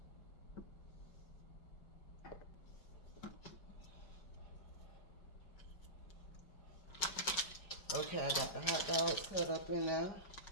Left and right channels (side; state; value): right; late; 5.2 ms